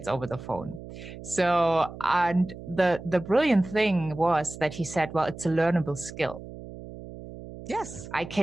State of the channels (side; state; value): right; noise; hum, 13 dB below the sound